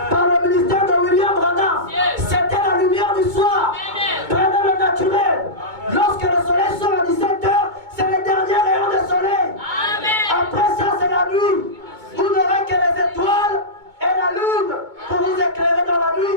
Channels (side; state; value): left; late; 2.2 ms